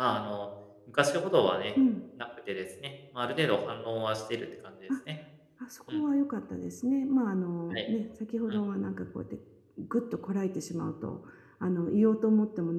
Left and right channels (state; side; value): identical; both; correlation 1.00